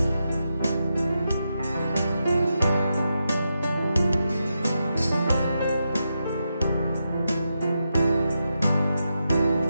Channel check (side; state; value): both; inverted; correlation -0.86